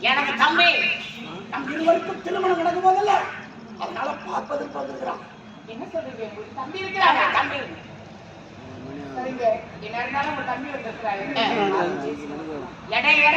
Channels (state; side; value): identical; both; correlation 1.00